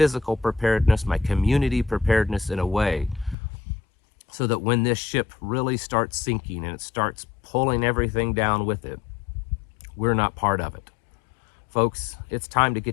preparedness, my community preparedness, in a way so that when this ship really starts sinking and it starts pulling everything down with it, we're not part of it. Folks, it's time to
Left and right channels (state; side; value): drops out; right; at 3.4 s